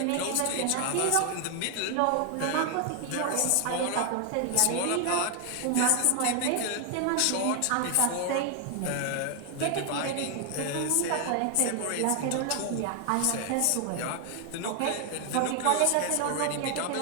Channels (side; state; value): both; different; correlation 0.00